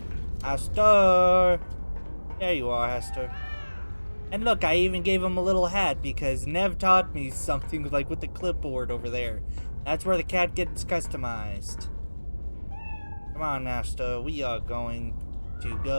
Hester! There you are, Hester. And look, I even gave him a little hat because Nev taught me something like with the clipboard over there. That's where the cat gets customized. Come on, Hester, we are going to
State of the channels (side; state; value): both; inverted; correlation -1.00